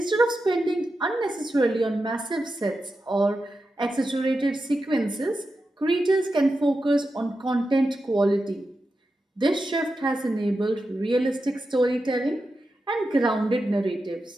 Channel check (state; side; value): normal; both; correlation 0.90